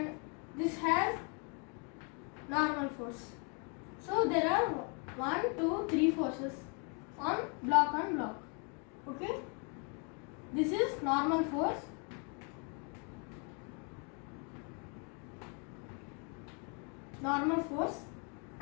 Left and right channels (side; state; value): right; quieter; 36.7 dB